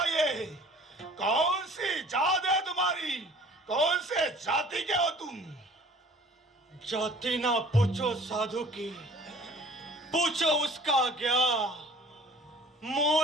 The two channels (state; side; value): normal; both; correlation 0.49